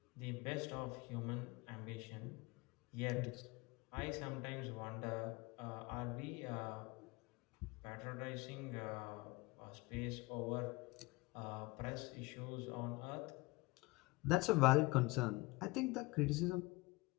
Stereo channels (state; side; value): quieter; right; 23.0 dB